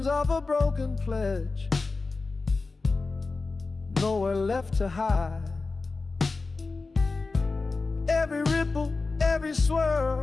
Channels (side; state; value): right; quieter; 3.8 dB